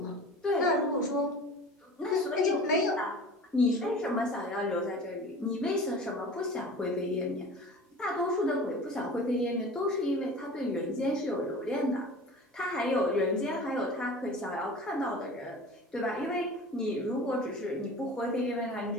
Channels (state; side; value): normal; both; correlation 0.39